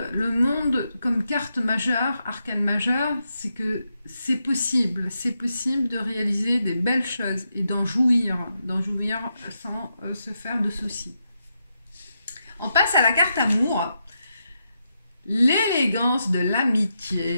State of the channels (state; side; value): inverted; both; correlation -0.84